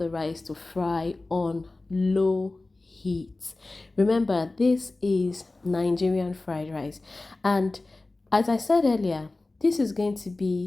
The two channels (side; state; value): right; quieter; 3.1 dB